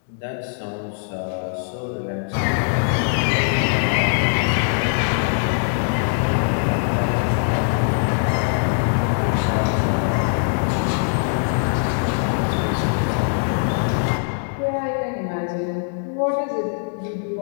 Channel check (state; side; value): silent; right; digital silence